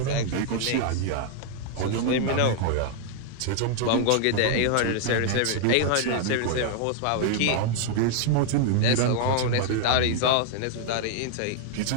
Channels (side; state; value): both; different; correlation 0.00